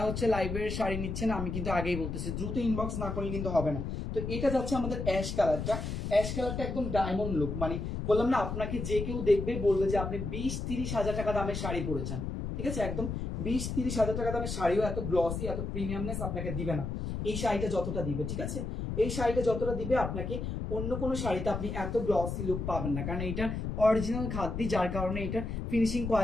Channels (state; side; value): noise; left; rumble, 4 dB below the sound